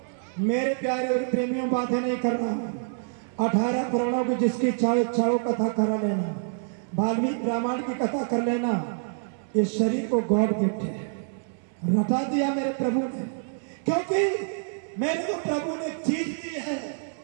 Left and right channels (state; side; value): silent; left; 60 dB below the other